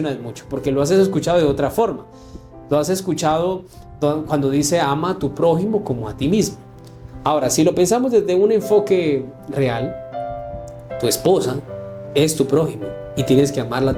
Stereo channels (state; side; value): identical; both; correlation 1.00